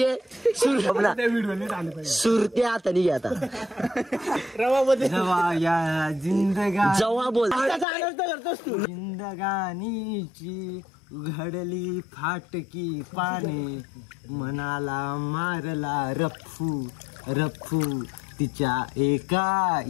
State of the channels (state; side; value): drops out; right; at 7.9 s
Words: सुरते हाताने घे आता. जवा या जवा बोल. जिंदगानीची उघडली फाटकी पाने मनाला मारला रफ्फू तिच्या एका